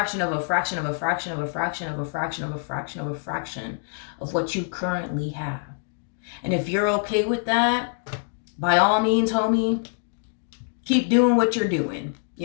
of a fraction of a fraction of a fraction of a fraction of a fraction of a fraction of what you currently have. And if you're okay with that, by all means, homie, keep doing what you're doing.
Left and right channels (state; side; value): silent; right; digital silence